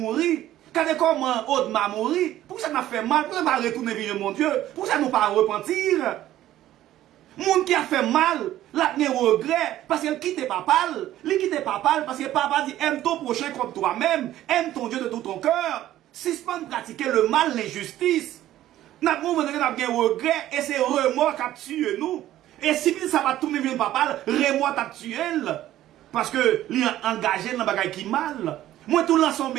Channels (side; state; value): left; quieter; 13.5 dB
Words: Quand comment Audma mourir. Pour ça m'a fait mal. Pour ça m'a retourné vers mon Dieu. Pour ça nous pas repentir. Moun qui a fait mal, la ne regret, parce qu'il quitte papa, il quitte papa, parce que papa dit aime ton prochain comme toi-même, aime ton Dieu de tout ton cœur, suspend de pratiquer le mal, l'injustice. Nous avons regret, et c'est remords qui a tué nous. Et si ça va tourner vers papa, remords t'a tué, parce que il est engagé dans le bagage qui mal. Moi, tout lance son